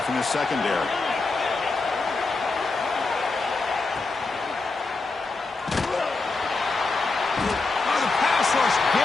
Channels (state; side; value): quieter; right; 3.8 dB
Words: from the secondary. Oh, the pass rush